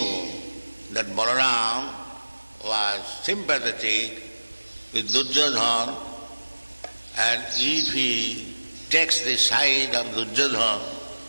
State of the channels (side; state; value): both; inverted; correlation -1.00